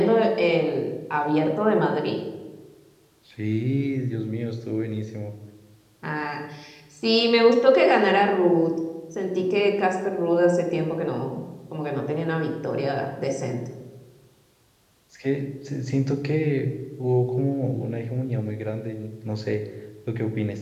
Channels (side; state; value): both; identical; correlation 1.00